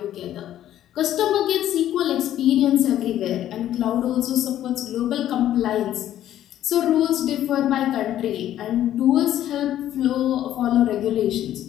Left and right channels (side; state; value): right; quieter; 12.0 dB